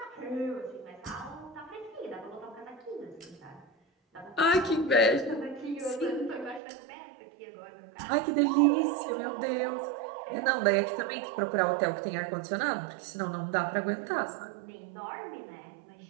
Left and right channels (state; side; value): drops out; left; at 6.6 s